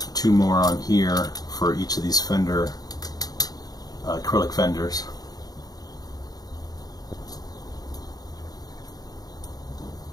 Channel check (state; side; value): late; right; 0.18 ms